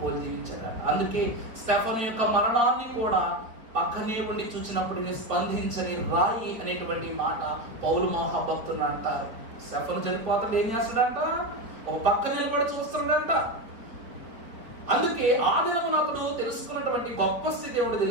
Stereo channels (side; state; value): left; late; 4.3 ms